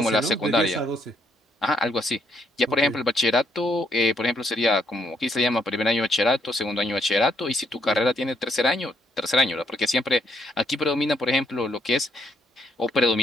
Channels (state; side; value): normal; both; correlation 0.72